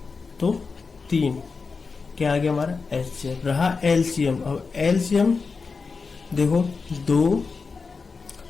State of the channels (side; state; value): right; quieter; 4.7 dB